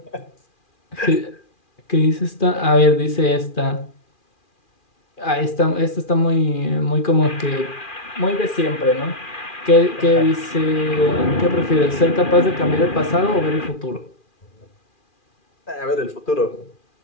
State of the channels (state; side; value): late; right; 2.4 ms